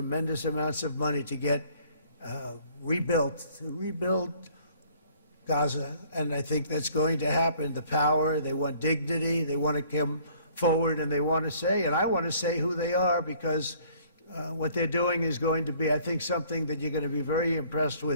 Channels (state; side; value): inverted; both; correlation -0.57